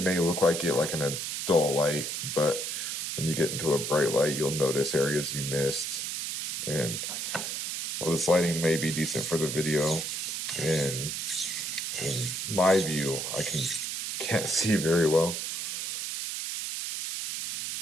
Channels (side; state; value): right; noise; hiss, 3 dB below the sound